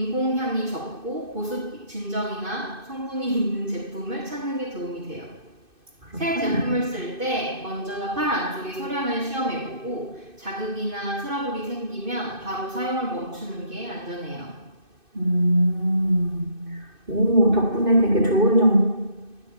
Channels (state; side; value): late; left; 2.6 ms